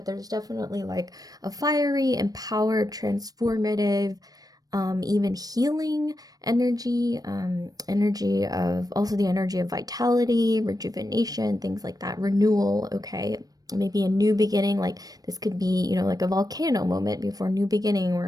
there's definitely like a fiery, empowered, transformative, even healing energy, energy of, also the energy of vitality, rejuvenation, things like that, renewal, okay? Maybe a new beginning, like this could be, like a volcano moment before a new beginning,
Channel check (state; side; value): late; left; 0.18 ms